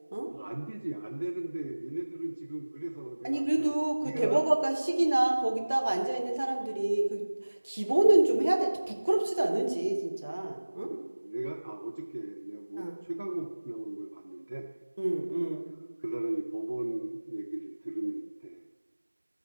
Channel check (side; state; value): both; inverted; correlation -1.00